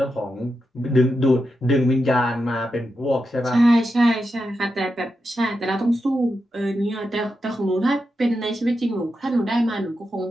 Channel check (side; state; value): both; normal; correlation 0.88